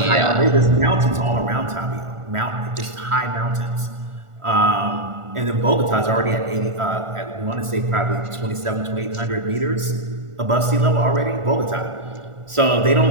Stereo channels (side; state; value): left; late; 1.4 ms